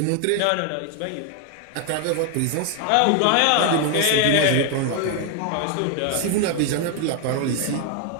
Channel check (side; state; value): both; different; correlation 0.01